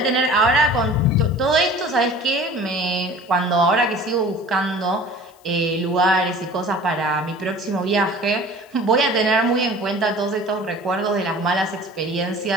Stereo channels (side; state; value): left; noise; hiss, 30 dB below the sound